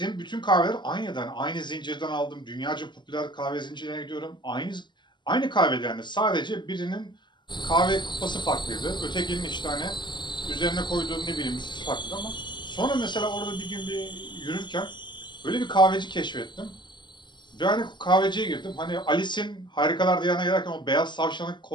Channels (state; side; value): late; right; 0.22 ms